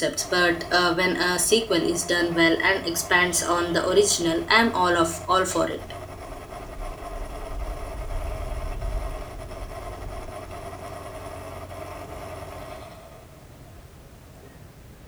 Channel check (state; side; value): identical; both; correlation 1.00